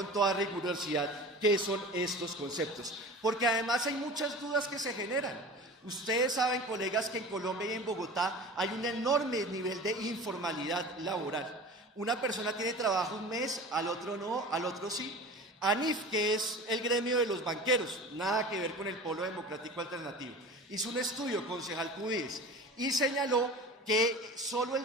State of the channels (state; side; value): normal; both; correlation 0.37